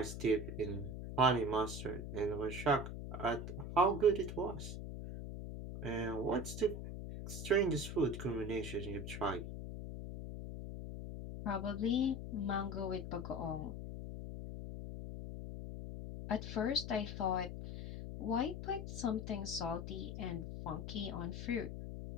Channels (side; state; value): left; noise; hum, 7 dB below the sound